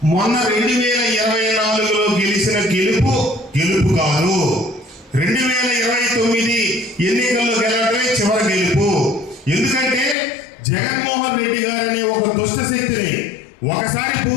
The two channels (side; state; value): right; drops out; at 10.2 s